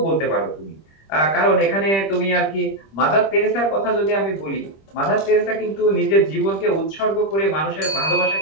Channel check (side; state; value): right; late; 25 ms